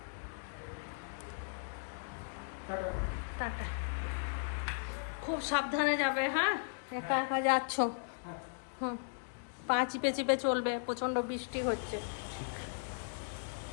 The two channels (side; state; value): right; silent; digital silence